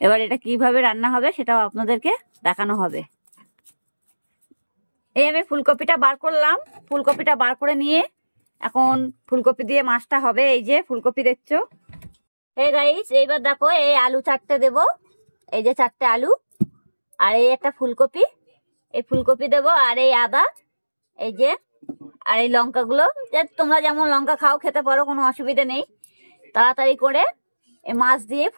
এবার এটা কিভাবে রান্না হবে সেটাও আপনাদেরকে দেখানো হবে। এই আমি ফুলকপিটা বার করলাম, ফুলকপিটা বার করে নিয়ে এখন ফুলকপি দিয়ে মাছটা হবে। এই যে ফুলকপি দেখছো। এই গাইস, এইবার দেখো এই আলু 4টে দেবো, এই যে 4টে আলু, আর এই একটা ফুলকপি, এই ফুলকপি দেবো, আর এই আদা, এই যে, আর এই লঙ্কাগুলো, যে তোমরা যেমন লঙ্কা খাও খেতে পারো, কোনো অসুবিধা নেই। তাড়াতাড়ি করে এই মাছ দিয়ে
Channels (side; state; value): both; inverted; correlation -1.00